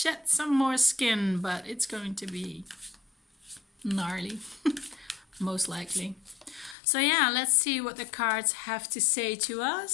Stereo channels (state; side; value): drops out; right; at 6.8 s